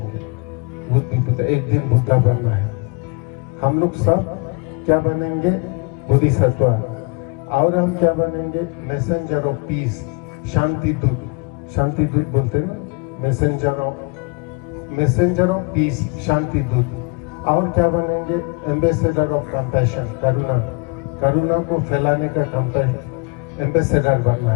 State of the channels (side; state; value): right; quieter; 31.6 dB